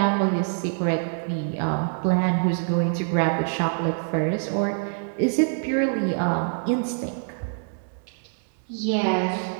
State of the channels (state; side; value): silent; left; digital silence